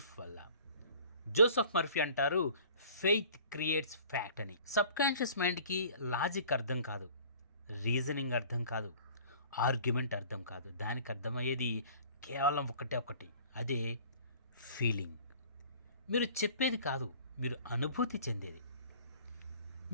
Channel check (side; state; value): both; inverted; correlation -0.49